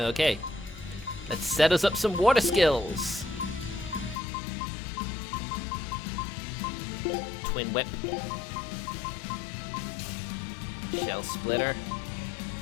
Let's set us up some water skills. Twin Whip. Shell Splitter.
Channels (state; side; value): drops out; right; at 4.2 s